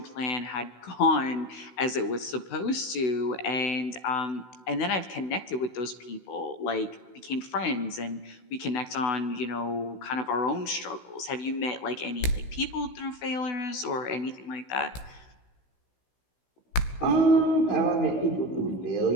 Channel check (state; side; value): late; right; 16 ms